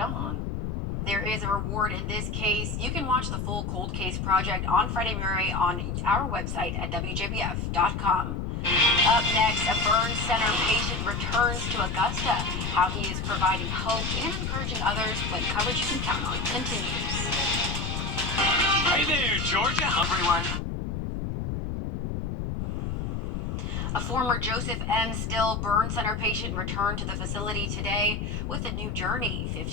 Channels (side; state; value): left; noise; rumble, 2 dB below the sound